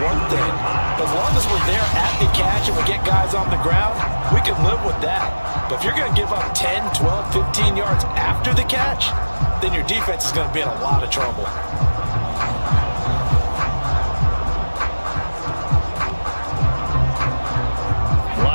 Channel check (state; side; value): inverted; both; correlation -1.00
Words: one thing. But as long as we're there at the catch and we get guys on the ground, we can live with that. But if you're going to give up 10, 12, 15 yards after the catch, then your defense is going to be in a lot of trouble.